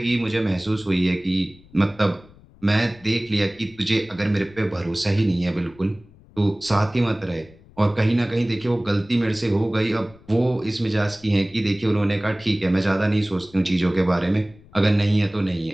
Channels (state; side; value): noise; left; rumble, 25 dB below the sound